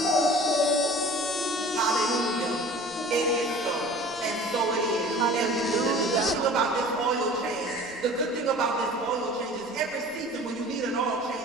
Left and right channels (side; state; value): left; noise; rumble, 30 dB below the sound